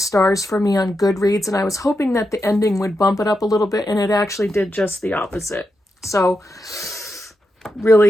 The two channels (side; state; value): both; normal; correlation 0.86